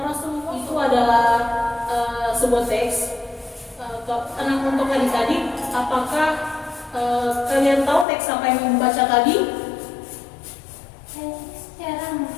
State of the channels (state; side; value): drops out; right; at 8.1 s